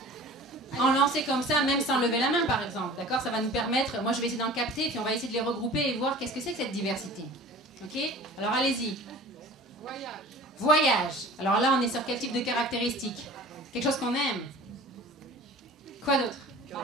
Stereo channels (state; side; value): normal; both; correlation 0.42